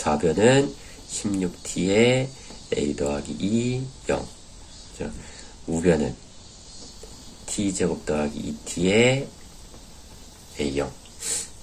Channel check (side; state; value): both; identical; correlation 1.00